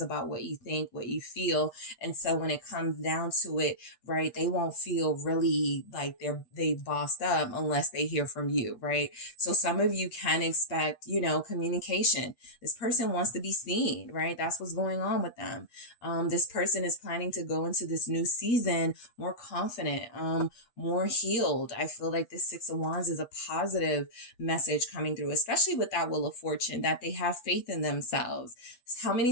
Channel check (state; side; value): late; right; 8.3 ms